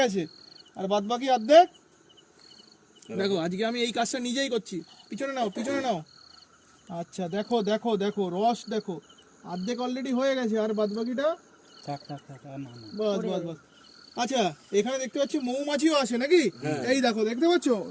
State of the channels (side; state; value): both; identical; correlation 1.00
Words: গেছে আর বাদ বাকি অর্ধেক। দেখো আজকে আমি এই কাজটা নিজেই করছি। পিছনে নাও, পিছনে নাও। আচ্ছা দেখো দেখো দেখো রস দেখো, অর্ধেক অলরেডি হয়ে গেছে আর বাদ বাকিটা বাস বাস বাস। আচ্ছা এখানে দেখতে পাচ্ছি মৌমাছিও আসে নাকি? এই দেখো দেখতে পাচ্ছ